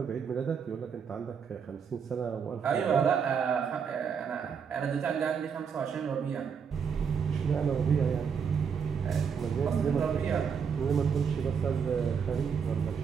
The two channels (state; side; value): quieter; left; 6.7 dB